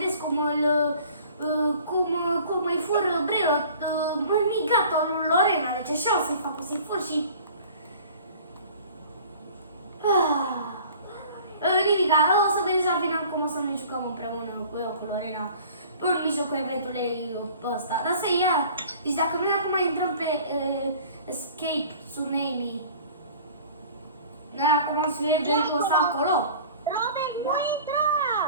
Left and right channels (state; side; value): inverted; both; correlation -0.47